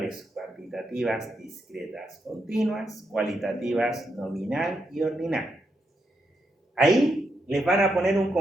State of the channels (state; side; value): normal; both; correlation 0.82